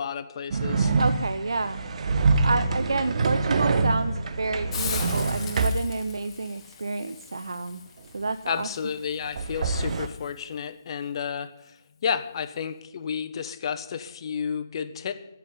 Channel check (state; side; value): inverted; both; correlation -0.77